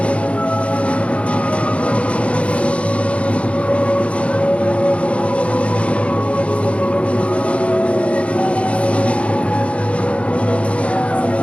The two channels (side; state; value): right; late; 0.061 ms